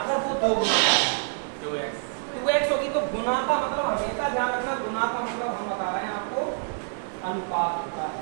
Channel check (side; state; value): left; silent; 60 dB below the other